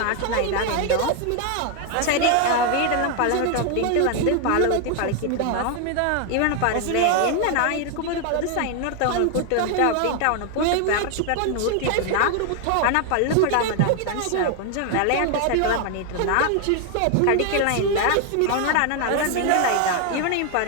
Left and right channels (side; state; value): both; different; correlation 0.00